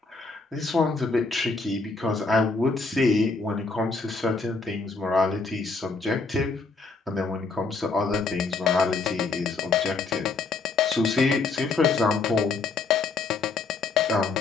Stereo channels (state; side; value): quieter; right; 4.1 dB